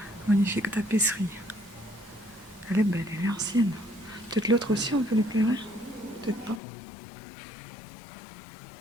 magnifique tapisserie. Elle est belle, elle est ancienne. Peut-être l'autre aussi, on peut l'éclairer? Peut-être pas.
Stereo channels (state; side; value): drops out; right; at 6.6 s